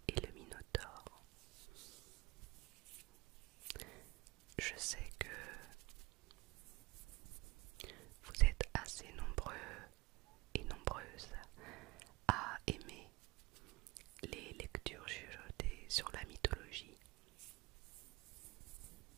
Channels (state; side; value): quieter; left; 22.3 dB